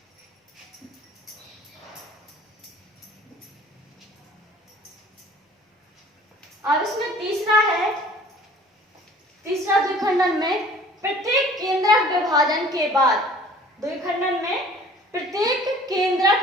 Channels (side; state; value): both; normal; correlation 0.50